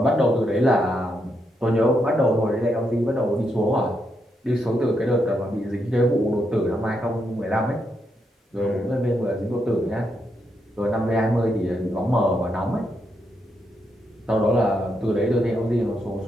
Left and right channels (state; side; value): normal; both; correlation 0.81